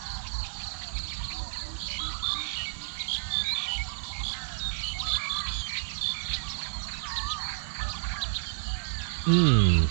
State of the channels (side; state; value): left; silent; 58 dB below the other